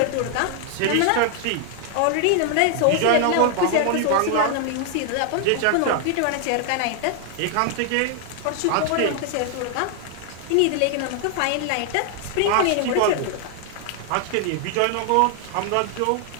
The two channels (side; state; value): both; different; correlation 0.00